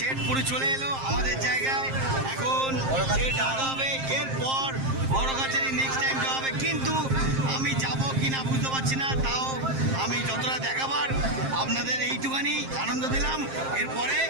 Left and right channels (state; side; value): late; left; 7.5 ms